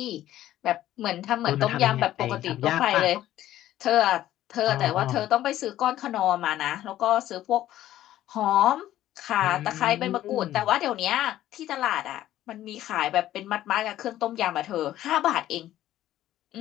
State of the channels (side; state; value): right; quieter; 13.4 dB